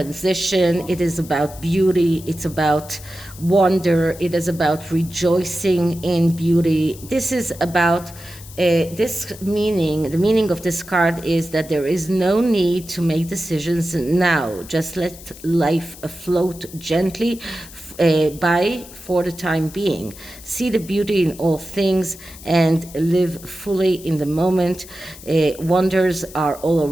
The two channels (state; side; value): noise; left; hiss, 18 dB below the sound